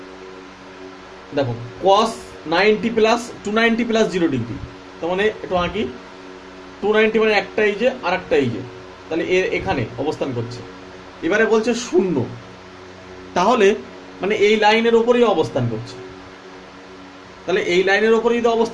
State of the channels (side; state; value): both; identical; correlation 1.00